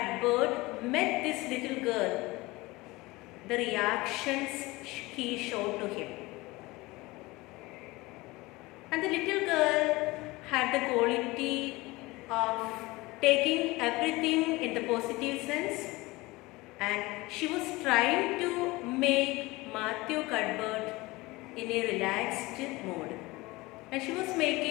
met this little girl, the reactions he showed to him. And the little girl had the quality of taking everything in the positive sense, and she was trying to make Matthew Cuthbert in a relaxed mood. And she was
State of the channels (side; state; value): right; quieter; 21.6 dB